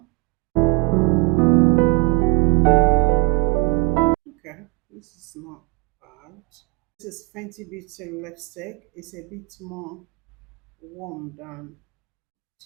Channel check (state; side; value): quieter; left; 26.3 dB